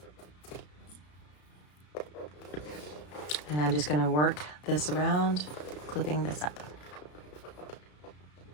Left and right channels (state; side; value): late; right; 33 ms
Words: And I'm just going to work this around, clipping this up.